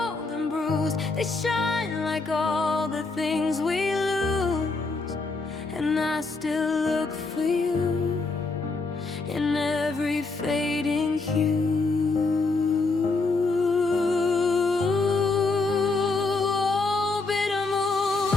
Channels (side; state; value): right; quieter; 3.8 dB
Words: and bruised. They shine like all the things we lose, and I still look for you in every fading hue.